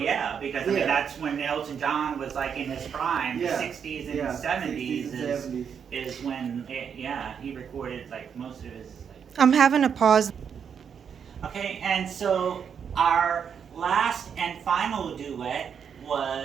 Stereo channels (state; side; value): quieter; left; 7.3 dB